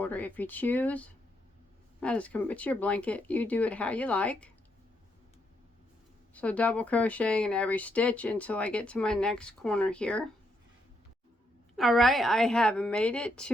if you choose. It's your blanket. You do it how you like. So double crocheting in every stitch until I get to my next corner here. All right, I have made it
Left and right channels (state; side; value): normal; both; correlation 0.77